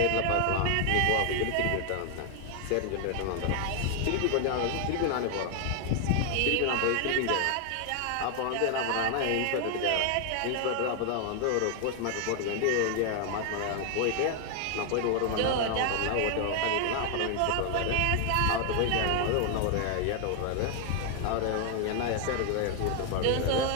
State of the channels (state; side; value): different; both; correlation 0.00